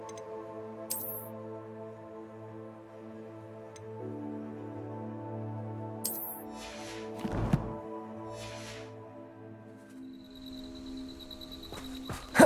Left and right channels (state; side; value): identical; both; correlation 1.00